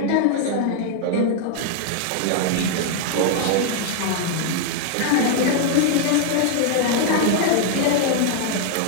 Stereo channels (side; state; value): both; different; correlation 0.00